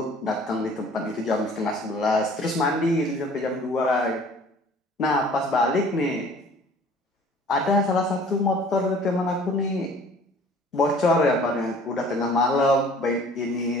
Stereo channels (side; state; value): both; normal; correlation 0.51